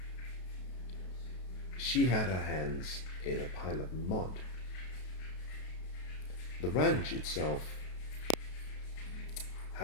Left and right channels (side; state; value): right; late; 32 ms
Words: she had her hands in a pile of mud. The ranch itself